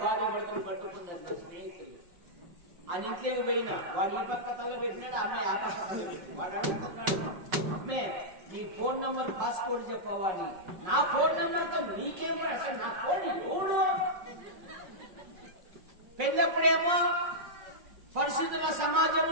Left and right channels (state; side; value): late; left; 5.4 ms